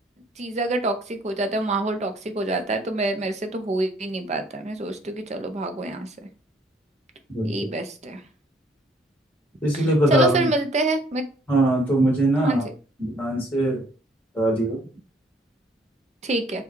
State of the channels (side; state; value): both; normal; correlation 0.61